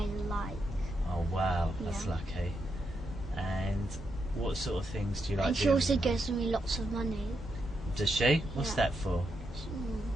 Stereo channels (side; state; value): both; normal; correlation 0.82